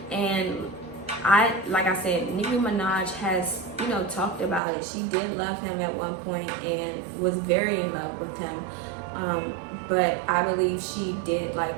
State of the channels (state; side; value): drops out; left; at 4.6 s